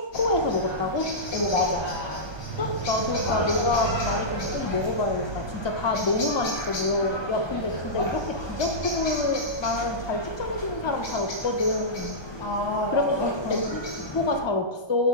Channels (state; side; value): late; right; 1.2 ms